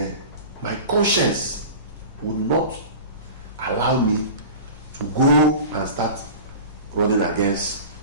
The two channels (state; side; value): inverted; both; correlation -0.34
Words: my conscience would not allow me to go and start running against